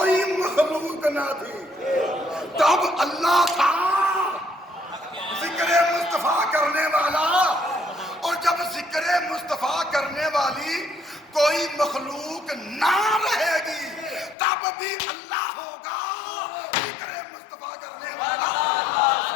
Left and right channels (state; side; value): drops out; right; at 14.4 s